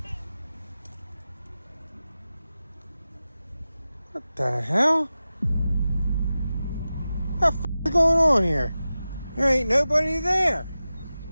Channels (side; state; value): both; inverted; correlation -0.94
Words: What the hell? What the f is going on here? There ain't nobody there.